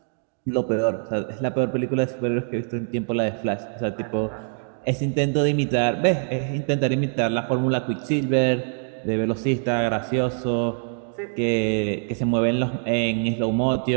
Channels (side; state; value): left; silent; 63 dB below the other